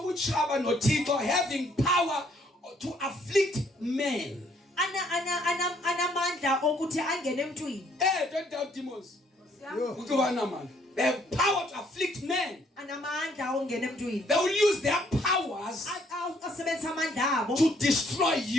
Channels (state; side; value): normal; both; correlation 0.66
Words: noThixo having power to afflict men. Anamandla okuthi angene emntwini. Don't doubt demons. Yo. They have power to afflict men. Anamandla ongena emntwini. They will use their powers Asebenzisa amandla abo to destroy